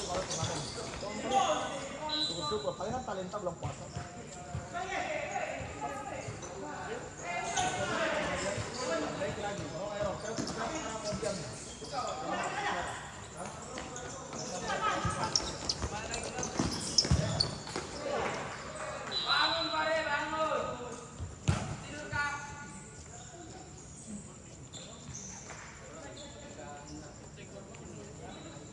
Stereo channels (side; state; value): both; identical; correlation 1.00